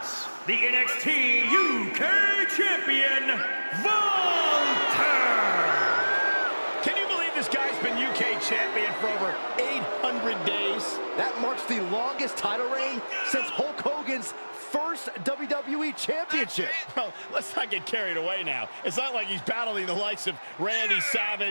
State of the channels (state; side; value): inverted; both; correlation -1.00